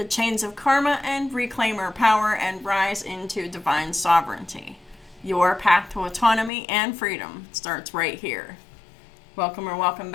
chains of karma and reclaim our power and rise into divine sovereignty. Your path to autonomy and freedom starts right here. Welcome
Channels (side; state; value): right; drops out; at 6.5 s